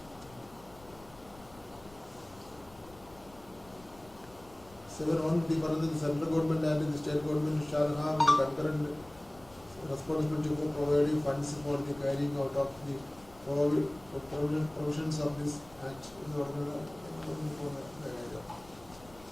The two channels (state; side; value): noise; left; rumble, 23 dB below the sound